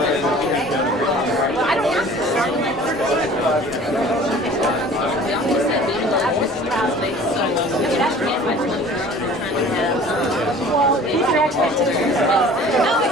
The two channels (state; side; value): normal; both; correlation 0.46